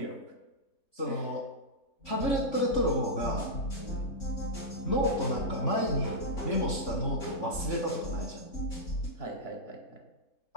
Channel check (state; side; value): late; right; 3.5 ms